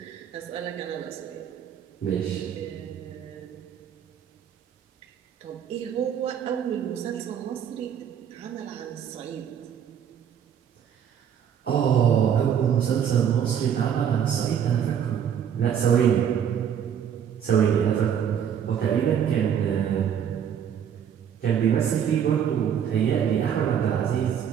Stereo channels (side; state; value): left; quieter; 8.6 dB